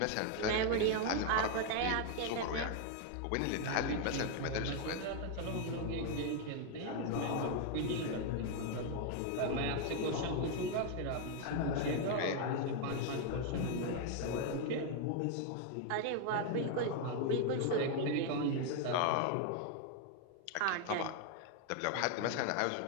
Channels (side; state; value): both; different; correlation 0.00